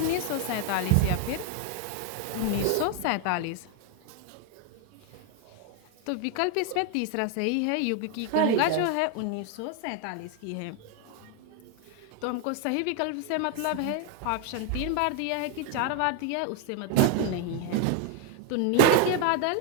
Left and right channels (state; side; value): different; both; correlation 0.01